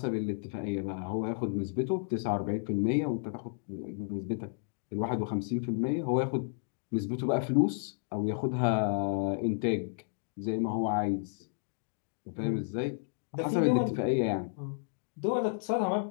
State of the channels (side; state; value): right; silent; digital silence